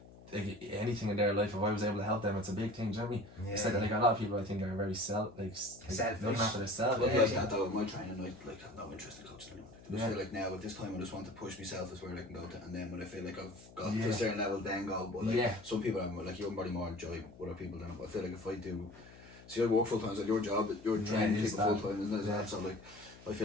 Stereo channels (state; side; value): noise; left; hum, 20 dB below the sound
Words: like, anything in their life, if I was able to help them, it's a big thing, do you know what I mean? yeah, It's like a lot of people I think are very selfish. Selfish. Looking after themselves. But Yeah. like that though, my training, like I've no interest in coaching anyone. I Yeah. feel like now at this time I just want to push myself as where I can go to, and then when I feel like I've got to Yeah. a certain level, then go. But like Yeah. some people, I'm like, you're probably more enjoy other people than. But I feel like if I do, see, I work full time, so your job, you're training it is people full that. time, isn't it? Yeah. So like, I